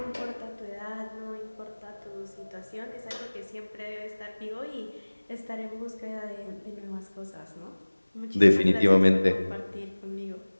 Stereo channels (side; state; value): both; inverted; correlation -1.00